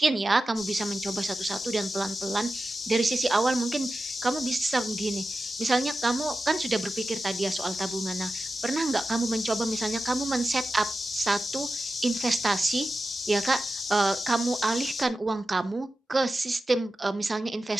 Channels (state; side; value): normal; both; correlation 0.93